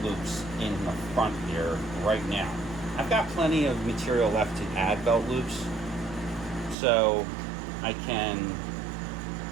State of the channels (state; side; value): drops out; left; at 6.8 s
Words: loops in the front here right now. I've got plenty of material left to add belt loops, so I can,